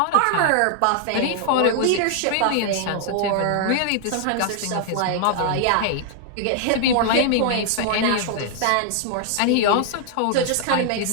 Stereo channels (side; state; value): both; different; correlation -0.01